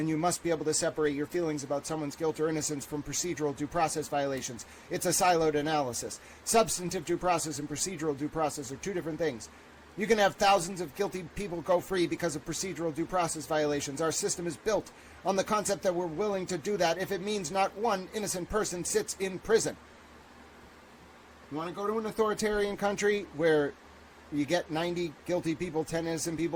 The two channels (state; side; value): identical; both; correlation 1.00